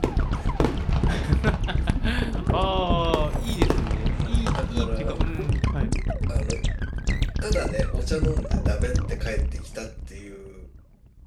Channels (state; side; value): identical; both; correlation 1.00